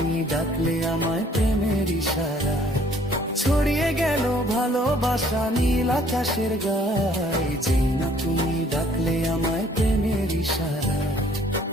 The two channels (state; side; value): normal; both; correlation 0.60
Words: ডাকলে আমায় প্রেমের ইশারায়। ছড়িয়ে গেল ভালোবাসা নীল আকাশের গায়ে, যে না তুমি ডাকলে আমায় প্রেমের ইশারায়।